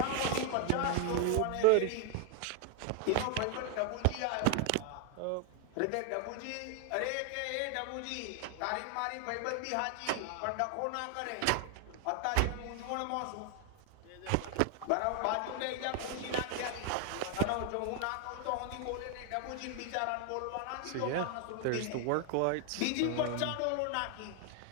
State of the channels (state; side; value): different; both; correlation 0.01